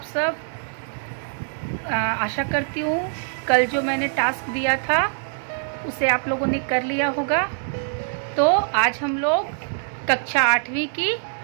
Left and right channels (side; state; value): left; silent; digital silence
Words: सब। आशा करती हूँ कल जो मैंने टास्क दिया था उसे आप लोगों ने कर लिया होगा। तो आज हम लोग कक्षा 8वीं की